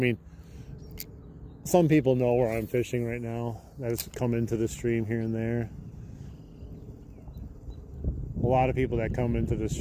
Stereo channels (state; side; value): identical; both; correlation 1.00